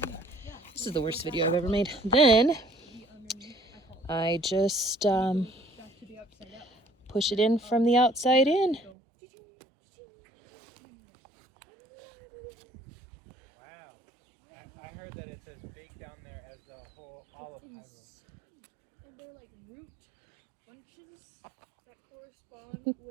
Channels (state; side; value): drops out; left; at 8.9 s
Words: this is the worst video I've ever made. Then I just push it in from the outside in.